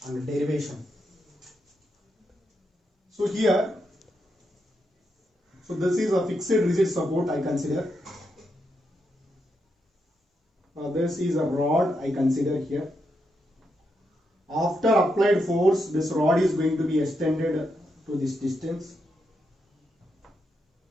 and derivation. So here, so this is a fixed rigid support I consider. This is a rod I consider here. After applied force, this rod is going to be extended to this distance.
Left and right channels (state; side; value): normal; both; correlation 0.82